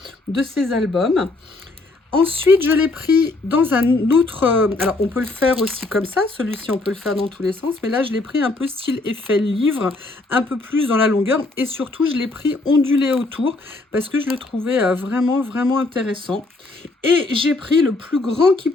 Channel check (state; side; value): quieter; right; 3.2 dB